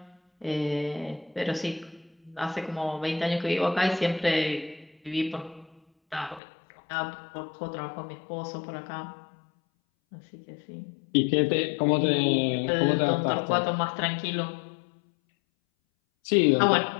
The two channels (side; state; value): right; drops out; at 6.4 s